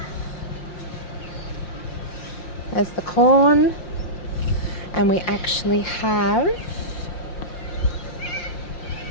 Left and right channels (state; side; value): late; right; 5.7 ms